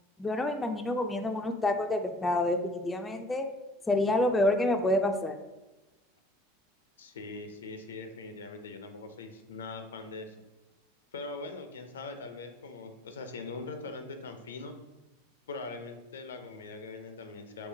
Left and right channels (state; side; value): normal; both; correlation 0.55